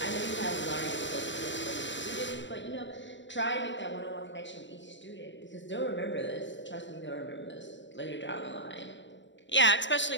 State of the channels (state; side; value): late; right; 0.54 ms